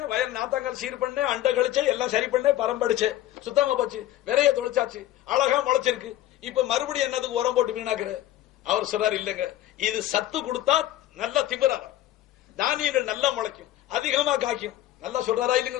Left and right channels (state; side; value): quieter; right; 13.8 dB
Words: வயல் நாத்தாங்கால் சீர் பண்ணேன், அண்டை கழிச்சே, எல்லாம் சரி பண்ணேன், பரம்படிச்சே, சுத்தமா போச்சு, விரைய தொலைச்சாச்சு, அழகா முளைச்சிருக்கு. இப்ப மறுபடியும் என்னதுக்கு உரம் போட்டு வீணாக்குற? அவர் சொல்றாரு, இல்லங்க, இது சத்து கொடுத்தா நல்லா திமிராகும், தானியங்கள் நல்லா முளைக்கும், அதிகமா காய்க்கும். நல்லா சொல்றாரா